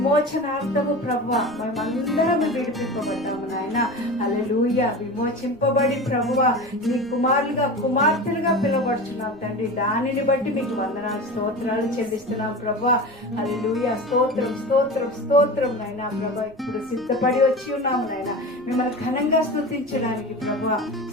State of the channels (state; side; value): noise; right; rumble, 26 dB below the sound